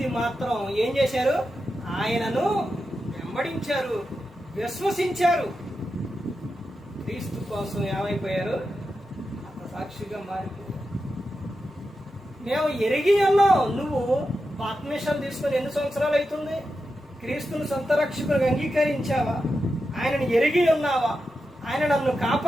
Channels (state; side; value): normal; both; correlation 0.89